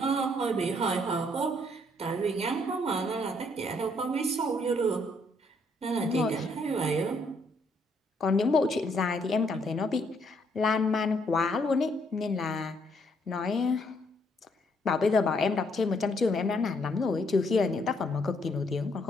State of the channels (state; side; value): normal; both; correlation 0.70